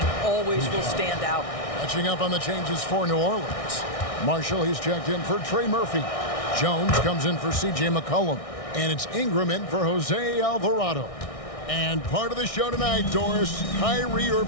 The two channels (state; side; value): late; right; 1.6 ms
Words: always will stand out. Catching up on the changes for New Orleans. Marshall, he's checked in for Trey Murphy. Jones comes in for C.J. McCollum. And it's Ingram in for Jose Alvarado. And part of the show tonight, Doris, Kyrie